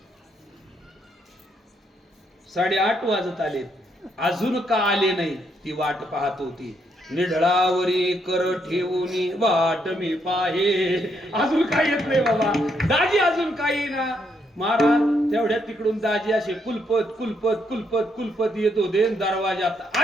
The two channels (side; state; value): both; normal; correlation 0.75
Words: 8:30 वाजत आलेत, अजून का आले नाही ती वाट पाहत होती. निढळावरी कर ठेवून वाट मी पाहे. अजून काय येत नाही बाबा, दाजी अजून काही ना. महाराज तेवढ्या तिकडून दाजी असे कुलपत कुलपत कुलपत कुलपत येत होते. दरवाजात